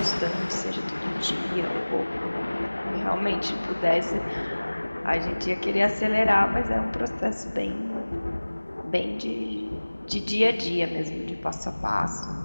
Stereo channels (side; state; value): both; inverted; correlation -1.00